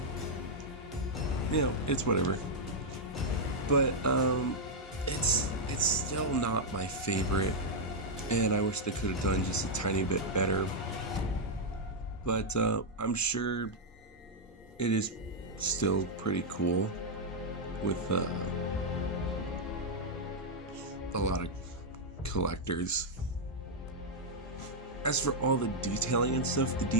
you know, it's whatever. But it's still not my favorite, and I wish they could have done just a tiny bit better. But I'm sure it is still pretty cool with a lot of collectors. As for all the detailing and stuff, the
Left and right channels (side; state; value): both; normal; correlation -0.03